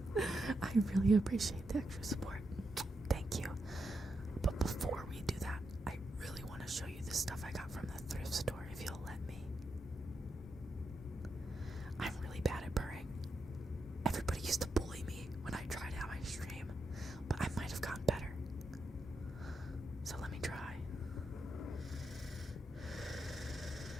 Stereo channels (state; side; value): normal; both; correlation 0.84